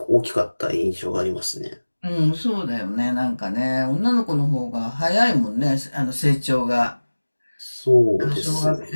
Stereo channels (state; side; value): inverted; both; correlation -1.00